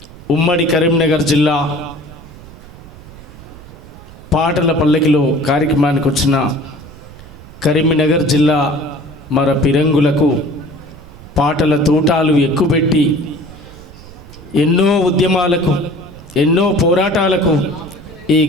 ఉమ్మడి కరీంనగర్ జిల్లా పాటల పల్లకిలో కార్యక్రమానికి వచ్చిన కరీంనగర్ జిల్లా మర పిరంగులకు పాటల తూటాలు ఎక్కుపెట్టి ఎన్నో ఉద్యమాలకు, ఎన్నో పోరాటాలకు ఈ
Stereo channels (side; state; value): right; noise; rumble, 19 dB below the sound